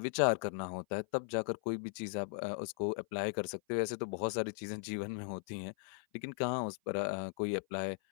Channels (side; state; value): right; silent; 53 dB below the other